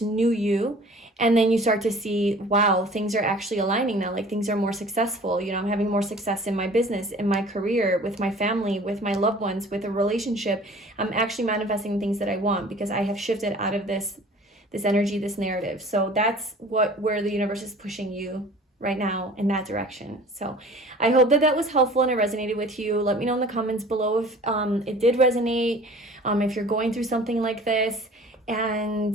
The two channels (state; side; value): normal; both; correlation 0.47